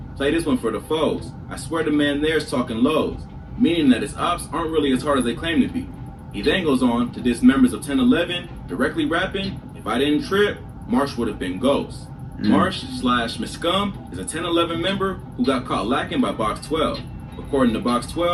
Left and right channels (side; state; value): both; identical; correlation 1.00